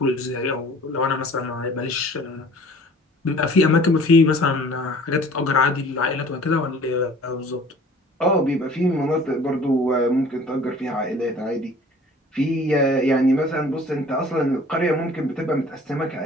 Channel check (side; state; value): both; normal; correlation 0.49